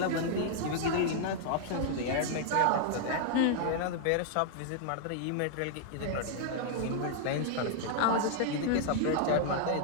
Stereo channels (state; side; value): different; both; correlation -0.01